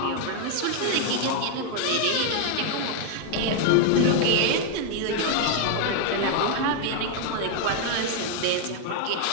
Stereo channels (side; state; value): both; different; correlation 0.00